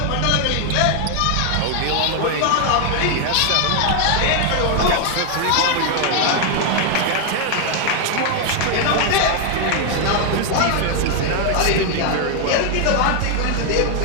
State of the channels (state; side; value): different; both; correlation 0.01